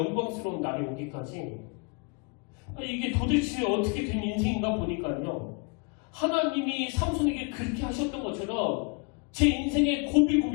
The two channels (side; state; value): right; quieter; 32.6 dB